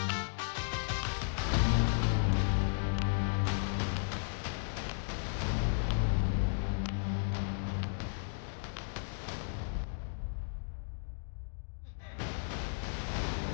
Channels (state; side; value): silent; right; digital silence